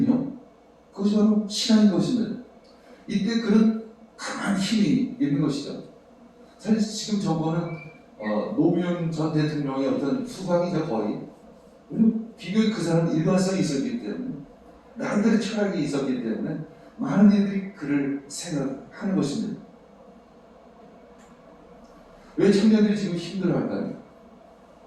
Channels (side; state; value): both; identical; correlation 1.00